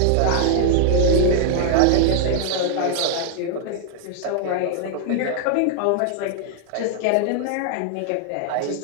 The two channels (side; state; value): both; different; correlation -0.01